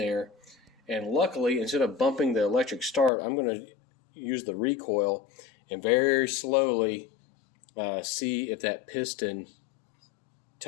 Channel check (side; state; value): right; drops out; at 3.1 s